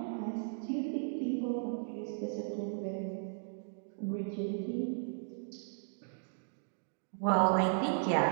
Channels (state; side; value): silent; left; digital silence